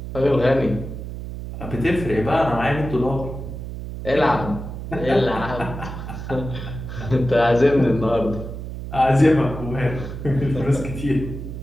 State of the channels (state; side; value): noise; right; hum, 8 dB below the sound